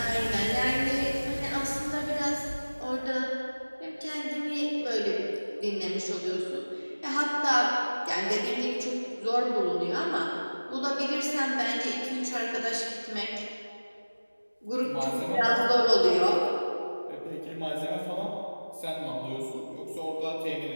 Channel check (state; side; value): inverted; both; correlation -1.00